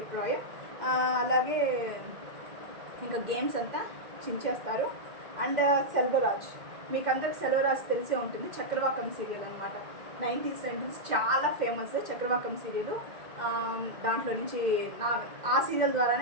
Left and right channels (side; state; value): left; late; 2.1 ms